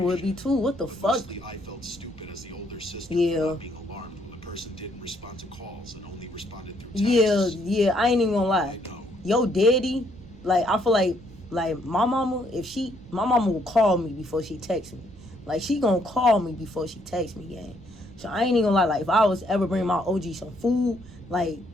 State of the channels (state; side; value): noise; right; rumble, 21 dB below the sound